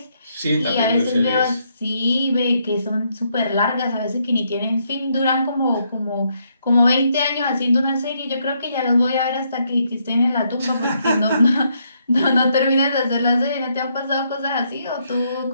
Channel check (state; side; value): inverted; both; correlation -0.75